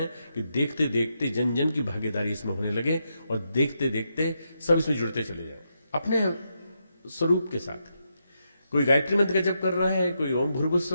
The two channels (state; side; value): inverted; both; correlation -0.83